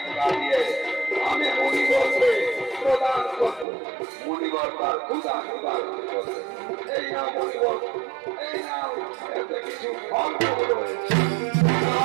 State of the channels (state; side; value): drops out; left; at 3.7 s